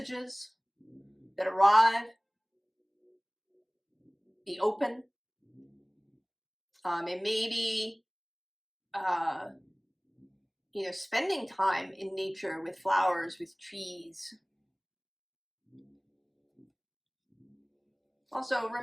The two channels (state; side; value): identical; both; correlation 1.00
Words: that arrive. Be open. And maybe, you know, spending time in nature with flowers, with trees. Also,